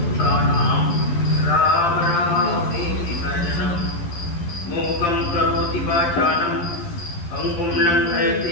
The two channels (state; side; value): late; right; 12 ms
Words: राम रामेति अर्जनं मूकं करोति वाचालं पङ्गुं